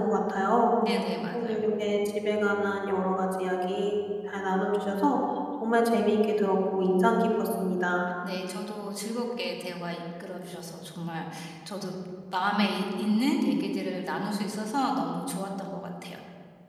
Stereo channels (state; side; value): identical; both; correlation 1.00